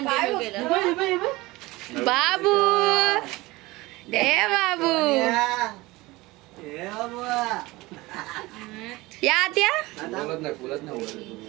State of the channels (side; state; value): left; quieter; 20.8 dB